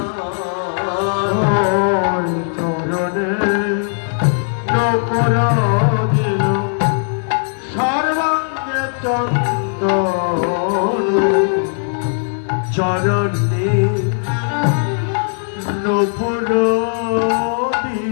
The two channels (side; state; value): right; silent; digital silence